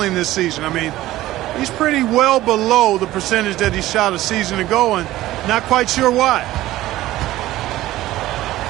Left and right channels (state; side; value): quieter; left; 15.8 dB